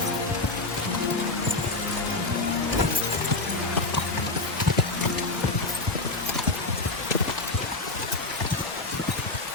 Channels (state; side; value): quieter; right; 3.1 dB